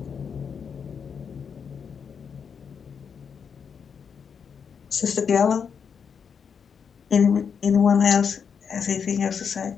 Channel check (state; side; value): quieter; right; 6.6 dB